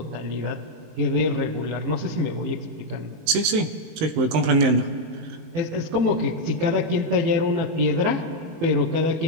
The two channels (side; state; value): left; late; 19 ms